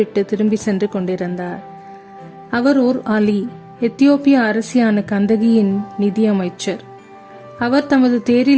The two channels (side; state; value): both; identical; correlation 1.00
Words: திரும்பி சென்று கொண்டிருந்தார். அவர் ஓர் அலி, எத்தியோப்பிய அரசியான கந்தகியின் நிதியமைச்சர். அவர் தமது